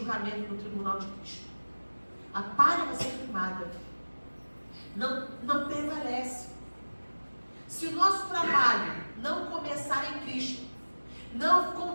no tribunal de Cristo. A palha vai ser queimada. Não prevalece. Se o nosso trabalho não começar em Cristo, não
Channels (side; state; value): both; inverted; correlation -1.00